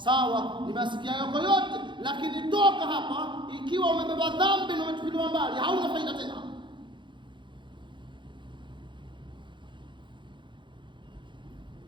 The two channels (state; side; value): late; left; 0.23 ms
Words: nimesikia yako yote, lakini toka hapa ikiwa umebeba dhambi na umetupiliwa mbali, hauna faida tena.